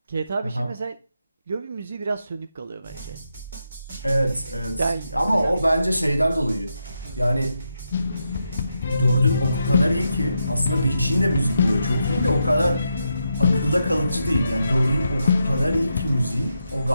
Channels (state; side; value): inverted; both; correlation -0.84